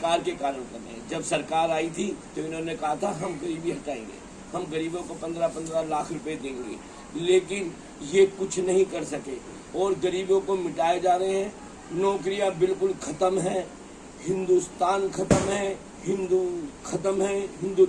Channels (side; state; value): both; identical; correlation 1.00